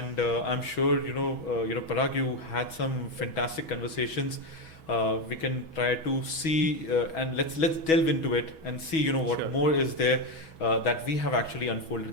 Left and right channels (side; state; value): right; late; 6.2 ms